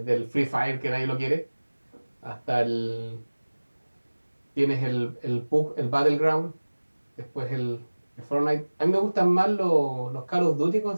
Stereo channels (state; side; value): inverted; both; correlation -1.00